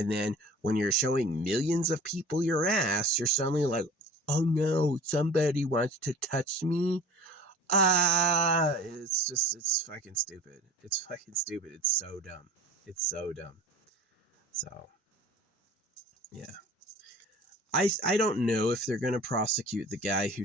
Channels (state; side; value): normal; both; correlation 0.42